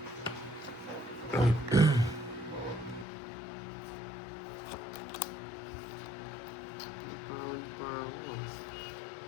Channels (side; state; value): right; drops out; at 3.1 s